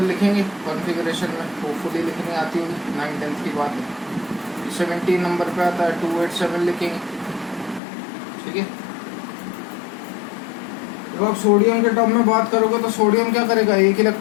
लिखेंगे कॉन्फ़िगरेशन में, होपफुली लिखनी आती होगी, 9-10 की बात है। 17 नंबर पे आता है 287 लिखेंगे, ठीक है। जब आप सोडियम के टर्म में बात करोगे तो सोडियम क्या करेगा? एक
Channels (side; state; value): right; drops out; at 7.8 s